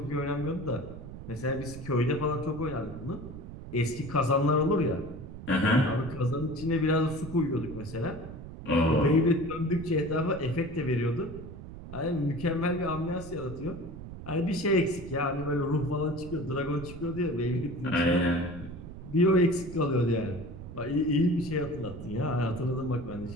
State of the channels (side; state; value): right; noise; rumble, 12 dB below the sound